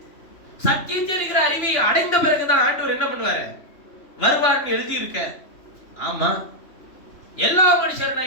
சத்தியம் தெரிகிற அறிவை அடைந்த பிறகுதான் ஆண்டவர் என்ன பண்ணுவாரு, வருவார்னு எழுதி இருக்க. ஆமா, எல்லா மனுஷர்னா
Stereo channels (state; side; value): late; right; 2.9 ms